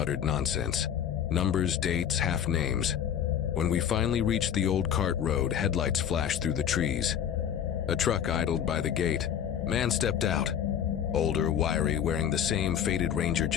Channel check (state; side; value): quieter; right; 9.1 dB